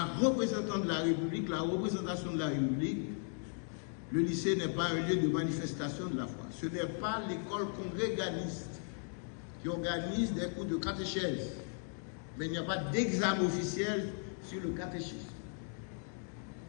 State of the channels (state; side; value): silent; right; 53 dB below the other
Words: représentation de la République, le lycée n'est pas un lieu de manifestation de la foi. Ce n'est pas l'école congréganiste qui organise des cours de catéchèse. Mais il n'y a pas d'examen officiel sur le catéchisme.